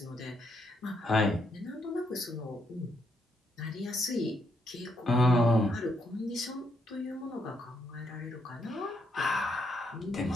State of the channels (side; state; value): both; normal; correlation 0.76